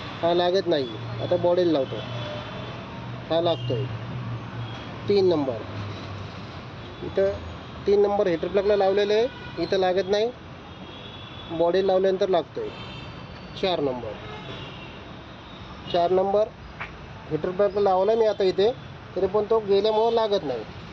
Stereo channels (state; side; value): identical; both; correlation 1.00